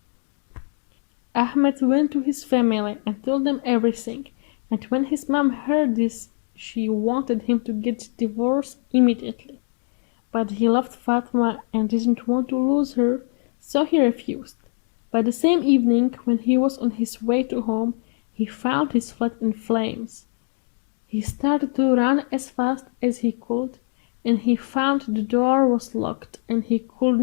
Ahmed went to his family and told them everything, and when his mom heard this, she wanted him to get divorced immediately. But he loved Fatma and didn't want to lose her, so he refused. By the same evening, when he was on his way to home, he found his flat in flames. He started to run as fast as he could, and he found the door was locked and he could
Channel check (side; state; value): right; silent; 58 dB below the other